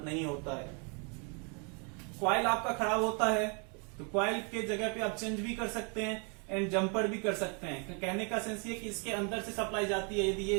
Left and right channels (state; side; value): quieter; left; 36.3 dB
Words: नहीं होता है। कॉइल आपका खराब होता है तो कॉइल के जगह पे आप चेंज भी कर सकते हैं एंड जंपर भी कर सकते हैं। कहने का सेंस ये कि इसके अंदर से सप्लाई जाती है, यदि ये